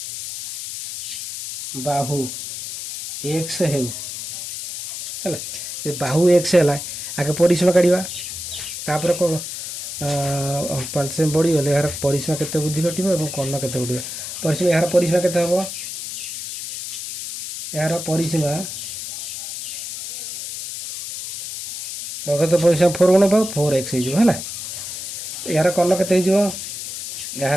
बाहु x हेउ हला ए बाहु x हला आगे परिसीमा काढिबा तापर को 5 सेमी बढ़ी गले यार परिसीमा केते वृद्धि घटिबो एवं कर्ण केते बढ़िबो परिसीमा यार परिसीमा केते हबो यार परिसीमा ବର୍ଗକ୍ଷେତ୍ର ପରିସୀମା 4 ଗୁଣ ପାଉ 4x ହେଇଯିବ ହେଲା। ଏହାର କର୍ଣ୍ଣ କେତେ ହେଇଯିବ?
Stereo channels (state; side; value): noise; left; hiss, 7 dB below the sound